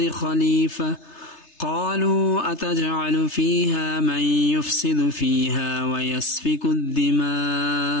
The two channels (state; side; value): late; right; 3.3 ms